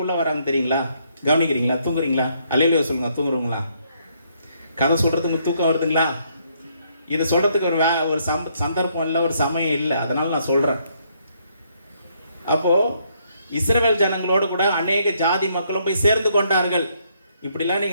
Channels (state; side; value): inverted; both; correlation -0.71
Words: வராங்க தெரியுங்களா? கவனிக்கிறீங்களா? தூங்குறீங்களா? அல்லேலூயா சொல்லுங்க. தூங்குறீங்களா? கதை சொல்கிறதுக்கு தூக்கம் வருதுங்களா? இது சொல்கிறதுக்கு ஒரு சந்தர்ப்பம் இல்லை, ஒரு சமயம் இல்லை. அதனால் நான் சொல்கிறேன். அப்போது இஸ்ரவேல் ஜனங்களோடு கூட அநேக ஜாதி மக்களும் போய் சேர்ந்து கொண்டார்கள். இப்படிலாம்